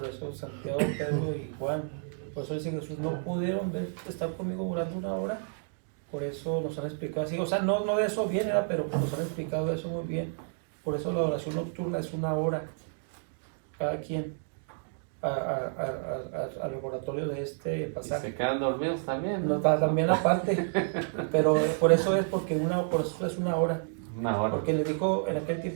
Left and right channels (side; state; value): left; silent; digital silence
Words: eso Santiago, Pedro y Juan, por eso dice Jesús: no pudieron estar conmigo orando una hora. Por eso nos han explicado así, o sea, no de eso viene, ¿verdad? Pero nos han explicado eso muy bien. Por eso la adoración nocturna es una hora, cada quien, al laboratorio de este Y pasaje. se quedan dormidos también, No, ¿no? también aparte, pero por eso es una hora. Una hora. Porque le dijo, en aquel